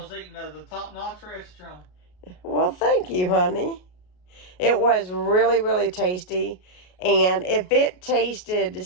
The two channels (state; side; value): late; right; 33 ms